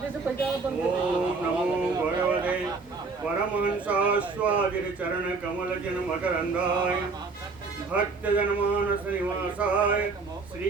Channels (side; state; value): left; quieter; 4.3 dB